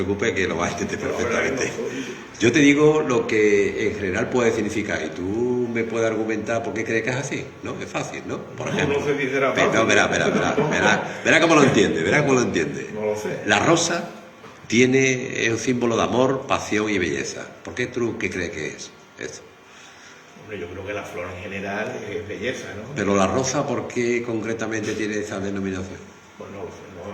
que lo vas a entender perfectamente. Yo te digo lo que en general puede significar y tú me puedes argumentar por qué crees que es así, ¿no? Es fácil, ¿no? Por ejemplo. No sé si será fácil. No, verá cómo lo entiende, No lo sé. La rosa es un símbolo de amor, pasión y belleza. ¿Por qué tú qué crees que es eso? Hombre, yo creo que la flor en general es belleza, ¿no? Pero la rosa, ¿por qué concretamente tiene esa denominación? Pues no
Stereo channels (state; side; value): identical; both; correlation 1.00